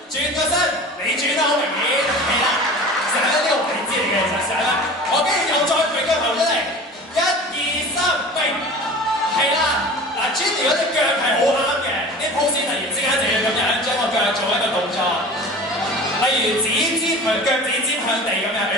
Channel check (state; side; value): normal; both; correlation 0.37